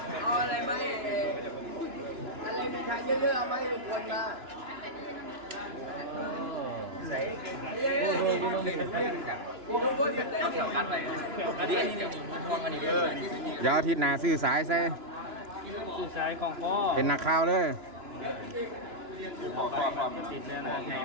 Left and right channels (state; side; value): late; left; 2.9 ms